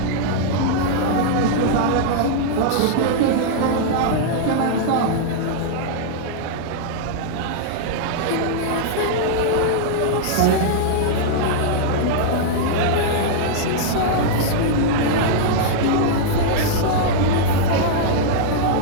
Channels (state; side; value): different; both; correlation -0.02